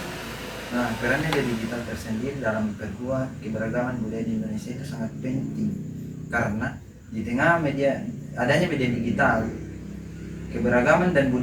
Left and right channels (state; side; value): identical; both; correlation 1.00